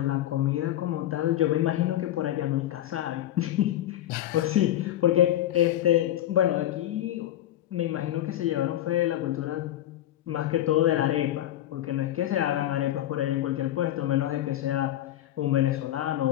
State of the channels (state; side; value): quieter; right; 13.0 dB